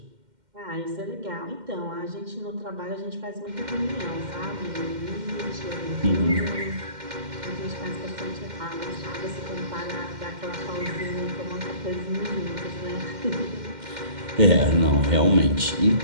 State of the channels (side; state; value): left; late; 2.1 ms